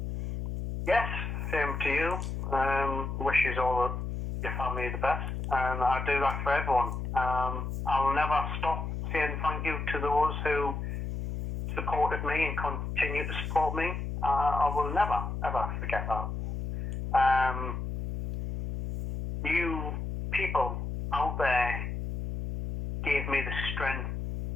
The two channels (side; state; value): left; noise; hum, 4 dB below the sound